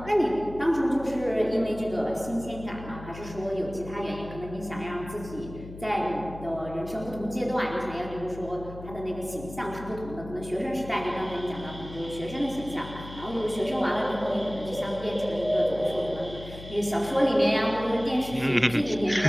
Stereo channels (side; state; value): left; noise; hum, 13 dB below the sound